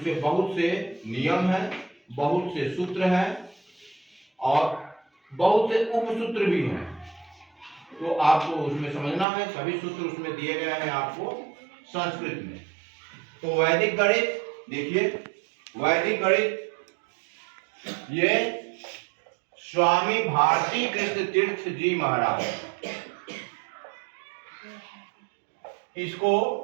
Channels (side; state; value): left; drops out; at 9.2 s